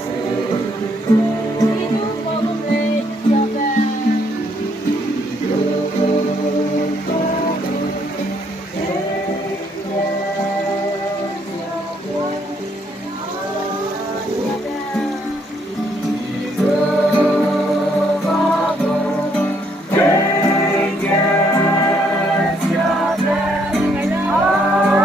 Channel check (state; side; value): normal; both; correlation 0.70